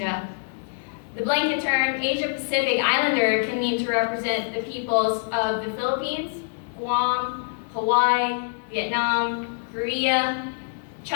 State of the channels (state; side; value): silent; right; 60 dB below the other